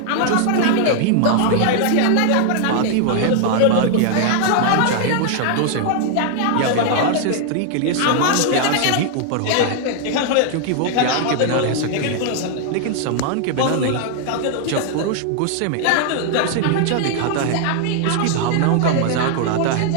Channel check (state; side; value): different; both; correlation 0.00